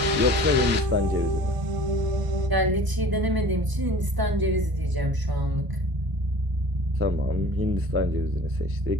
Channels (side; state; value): left; late; 1.0 ms